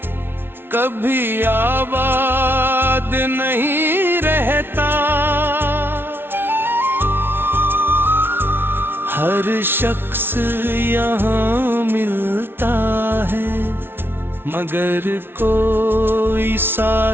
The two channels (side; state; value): left; late; 0.11 ms